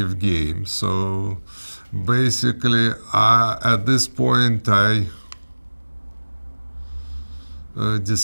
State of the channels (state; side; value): inverted; both; correlation -1.00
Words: game. So basically, at this point, I